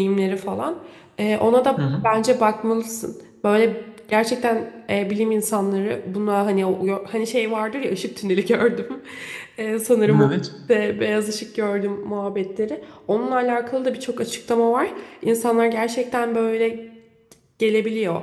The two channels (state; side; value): identical; both; correlation 1.00